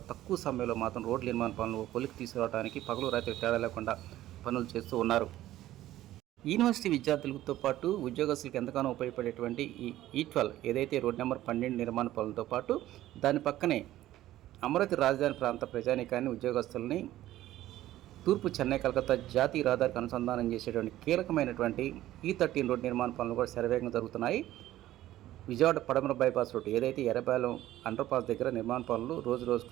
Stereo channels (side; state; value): left; quieter; 14.4 dB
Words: తక్కువ సమయంలో మాత్రం రోడ్డు నిర్మాణ పనులు కొలికి తీసుకురావడానికి పగలు రాత్రి తేడా లేకుండా పనులు చేస్తూ ఉన్నారు. యూనివర్సిటీ విద్యార్థులతో పాటు ఉద్యోగస్తులకు ఎంతగానో ఉపయోగపడేటువంటి ఈ E12 ఏదైతే రోడ్ నెంబర్ 12 నిర్మాణ పనులతో పాటు దాని పక్కనే అమరావతి రాజధాని ప్రాంత ప్రజానీకాన్ని, ఉద్యోగస్తుల్ని తూర్పు చెన్నై కలకత్తా జాతీయ రహదారికి అనుసంధానం చేసేటువంటి కీలకమైనటువంటి E13 రోడ్ నిర్మాణ పనులు కూడా శరవేగంగా జరుగుతున్నాయి. విజయవాడ పడమర బైపాస్ రోడ్ ఏదైతే ఎర్రబాలెం అండర్ పాస్ దగ్గర నిర్మాణ పనులు రోజు